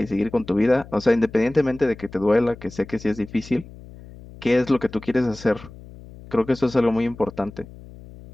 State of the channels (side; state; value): left; noise; hum, 18 dB below the sound